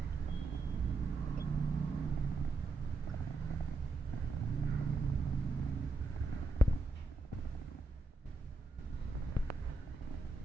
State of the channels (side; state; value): left; quieter; 3.3 dB